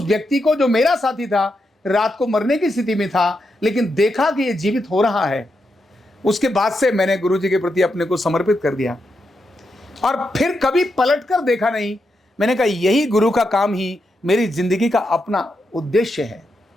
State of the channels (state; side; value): normal; both; correlation 0.84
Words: व्यक्ति को, जो मेरा साथी था, रात को मरने की स्थिति में था, लेकिन देखा कि ये जीवित हो रहा है। उसके बाद से मैंने गुरुजी के प्रति अपने को समर्पित कर दिया और फिर कभी पलट कर देखा नहीं। मैंने कहा यही गुरु का काम ही मेरी जिंदगी का अपना उद्देश्य है,